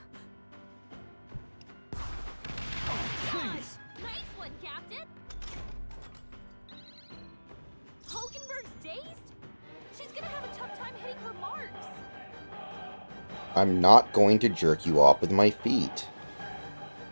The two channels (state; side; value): inverted; both; correlation -1.00